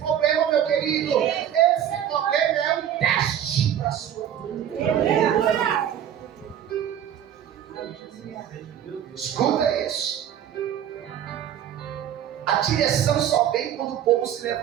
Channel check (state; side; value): quieter; left; 10.0 dB